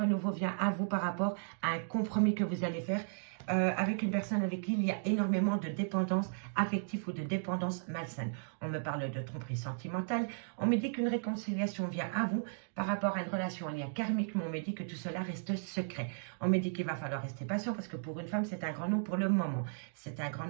vient à vous par rapport à un compromis que vous allez faire avec une personne avec qui il y a énormément de dépendance affective ou de dépendance malsaine. On me parle de tromperie sentimentale. On me dit qu'une réconciliation vient à vous par rapport à une relation en lien karmique, mais on me dit que tout cela reste secret. On me dit qu'il va falloir rester patient parce que pour une femme, c'est un grand nom pour le moment. C'est un grand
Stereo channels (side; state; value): left; silent; digital silence